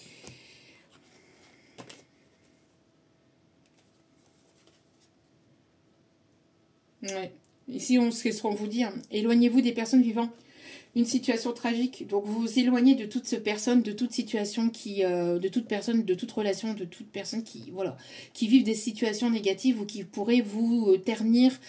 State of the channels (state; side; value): identical; both; correlation 1.00